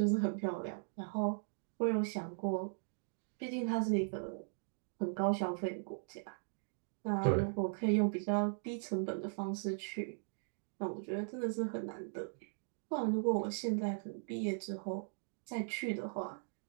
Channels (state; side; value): silent; left; digital silence